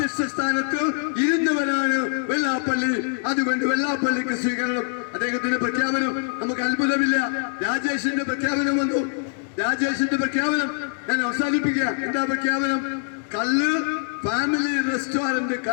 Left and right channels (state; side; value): silent; right; digital silence